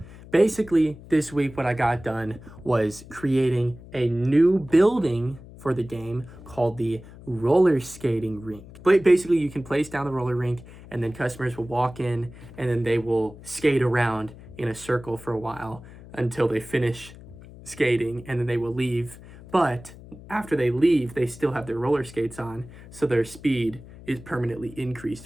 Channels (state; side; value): noise; left; hum, 18 dB below the sound